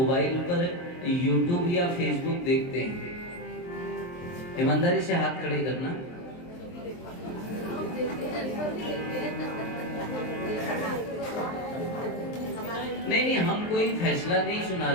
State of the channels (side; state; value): right; late; 23 ms